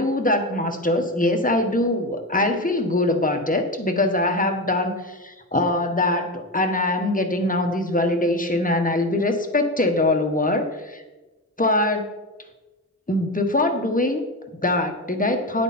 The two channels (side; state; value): both; normal; correlation 0.19